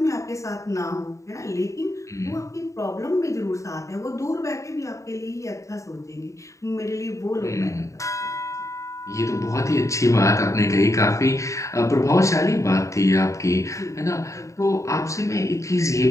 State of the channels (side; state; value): right; late; 0.15 ms